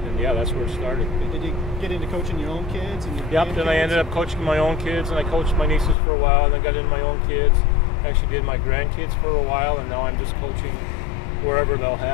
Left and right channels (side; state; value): right; drops out; at 6.0 s